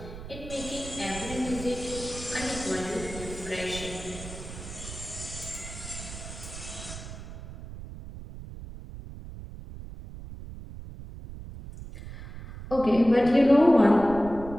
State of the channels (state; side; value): noise; right; rumble, 12 dB below the sound